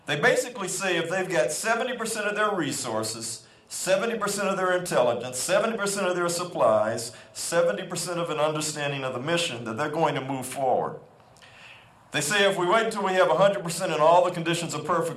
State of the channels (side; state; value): both; identical; correlation 1.00